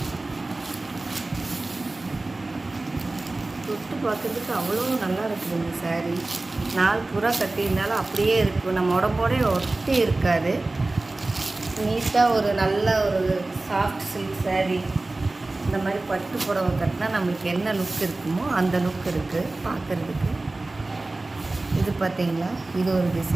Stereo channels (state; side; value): quieter; left; 3.0 dB